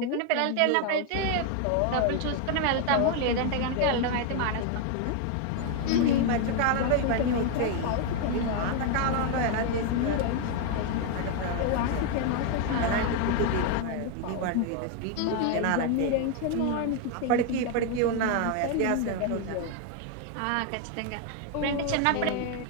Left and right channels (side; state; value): both; different; correlation 0.01